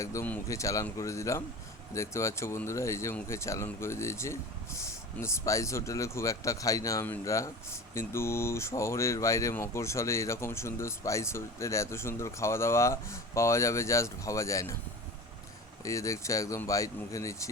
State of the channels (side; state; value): both; normal; correlation 0.35